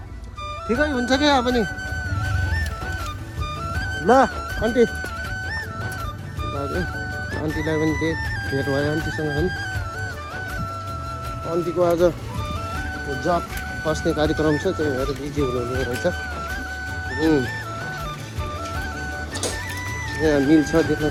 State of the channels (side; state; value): both; identical; correlation 1.00